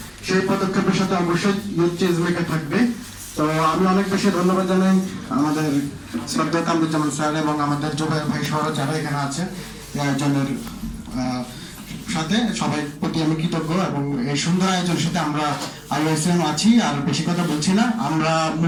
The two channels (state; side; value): identical; both; correlation 1.00